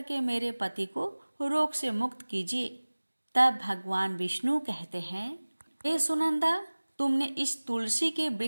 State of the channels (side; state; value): both; inverted; correlation -1.00